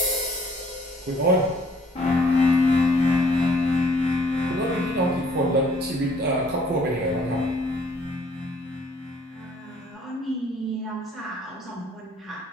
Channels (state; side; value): normal; both; correlation 0.60